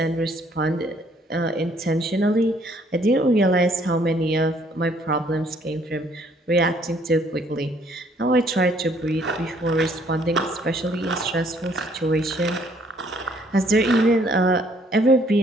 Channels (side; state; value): both; normal; correlation 0.63